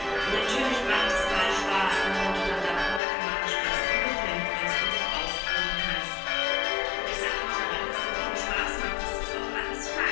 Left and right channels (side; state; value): right; drops out; at 3.0 s